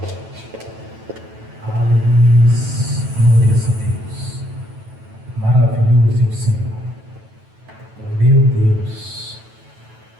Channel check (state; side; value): late; left; 9.1 ms